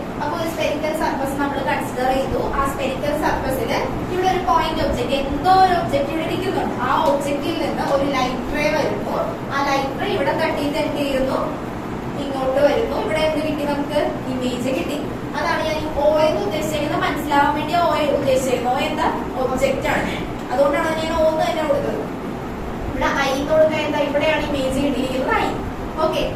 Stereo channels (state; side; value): identical; both; correlation 1.00